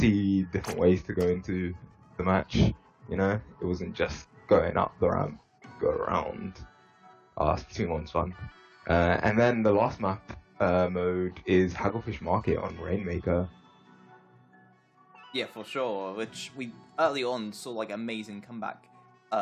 different ways to go into the match. You know, it wasn't just going up the ramp, go around. Splatoon 1's fun. And then the last map mode is Hagglefish Market on Rainmaker. Yeah, for sure. Which we early on saw like amazing comeback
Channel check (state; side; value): identical; both; correlation 1.00